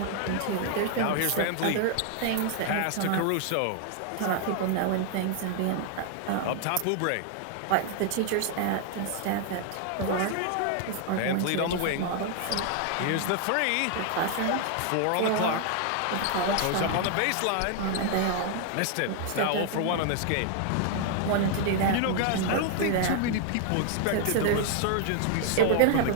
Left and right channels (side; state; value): both; different; correlation 0.00